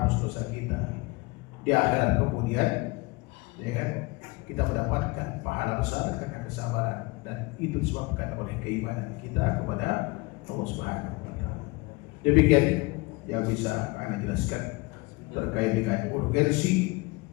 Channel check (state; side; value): quieter; right; 24.8 dB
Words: dosa kita, di akhirat kemudian, ya kan, kita mendapatkan pahala besar karena kesabaran, dan itu disebabkan oleh keimanan kita kepada Allah Subhanahu wa ta'ala. Demikian yang bisa Anda jelaskan terkait dengan urgensi,